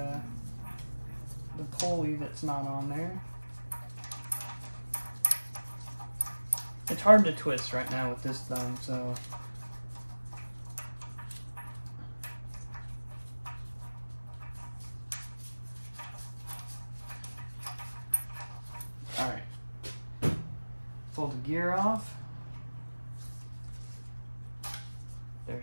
pulley that's not on there. It's hard to twist right now with this thumb, so alright. Pull the gear off. There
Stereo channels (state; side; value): inverted; both; correlation -1.00